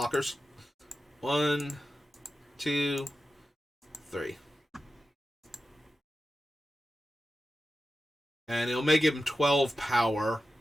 1, 2, 3. And it'll make him 12 power,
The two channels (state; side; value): normal; both; correlation 0.92